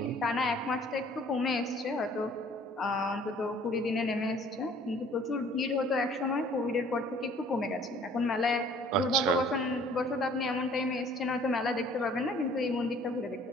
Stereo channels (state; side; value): normal; both; correlation 0.55